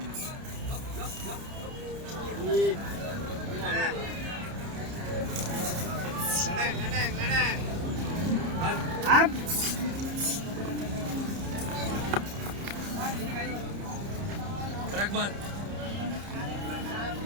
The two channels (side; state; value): left; late; 30 ms